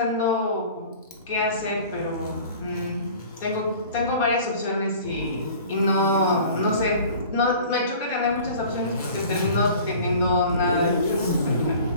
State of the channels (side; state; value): both; inverted; correlation -0.45